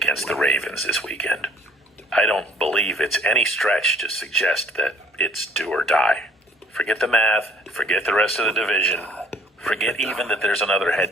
the Ravens this weekend. I don't believe it's any stretch to suggest that it's do or die. Forget the math, forget the rest of the division, forget even that there's another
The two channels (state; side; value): normal; both; correlation 0.57